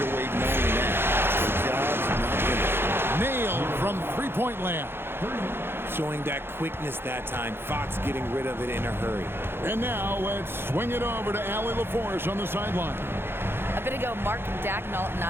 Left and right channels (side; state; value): left; late; 0.11 ms